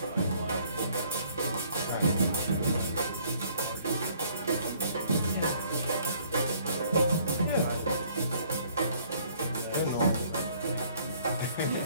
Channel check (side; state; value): both; inverted; correlation -0.60